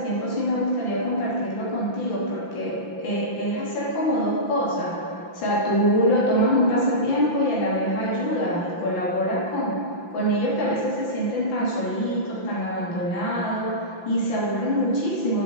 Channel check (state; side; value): late; right; 5.9 ms